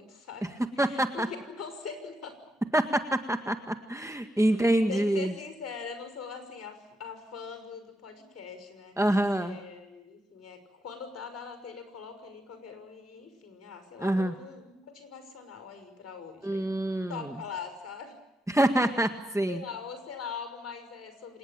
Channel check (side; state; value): both; normal; correlation 0.81